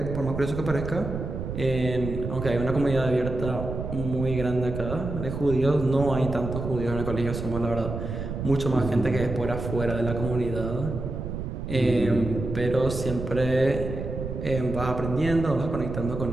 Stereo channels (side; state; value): right; noise; rumble, 5 dB below the sound